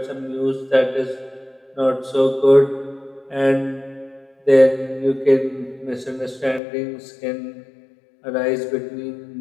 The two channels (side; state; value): right; drops out; at 6.6 s